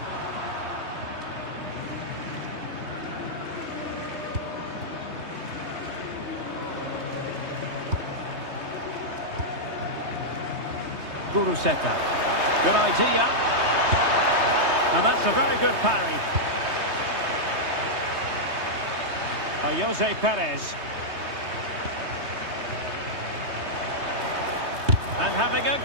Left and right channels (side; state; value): left; late; 3.2 ms